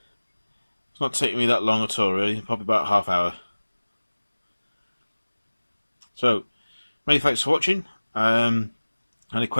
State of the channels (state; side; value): inverted; both; correlation -1.00